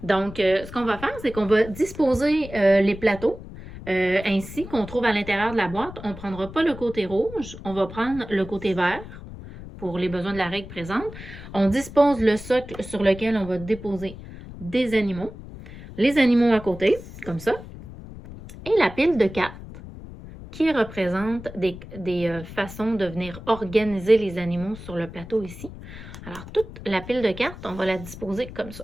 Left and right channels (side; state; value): left; noise; rumble, 14 dB below the sound